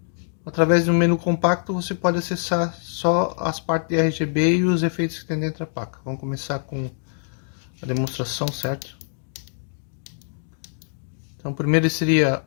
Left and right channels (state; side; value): silent; right; digital silence